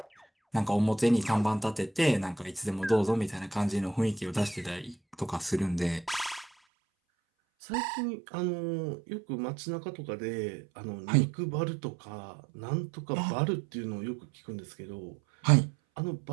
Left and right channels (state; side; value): drops out; left; at 6.5 s